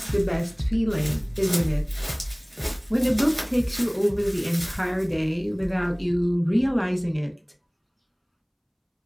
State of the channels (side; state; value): both; identical; correlation 1.00